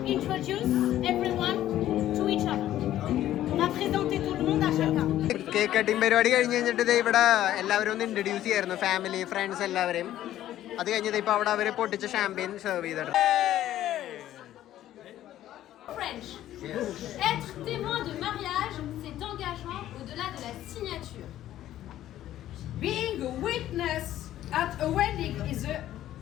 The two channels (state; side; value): quieter; right; 12.9 dB